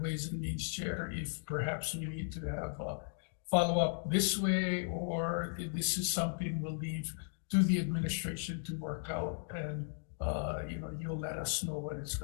Ways and Means chair if perhaps we need to have a follow up this way, or if this is something we'll leave to the administration to work out, and you'll let us know when it's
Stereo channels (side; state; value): right; silent; digital silence